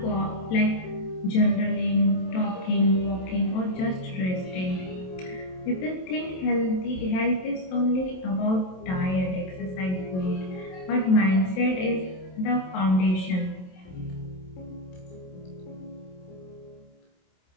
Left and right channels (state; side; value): late; right; 27 ms